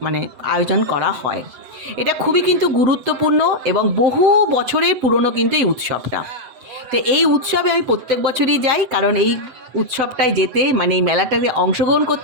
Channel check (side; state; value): left; late; 7.9 ms